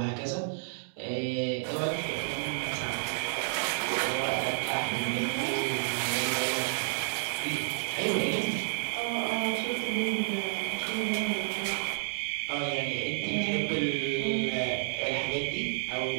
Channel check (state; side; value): silent; left; digital silence